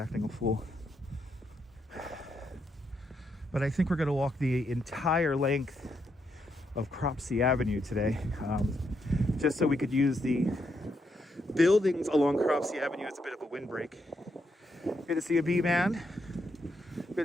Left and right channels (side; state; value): both; normal; correlation 0.79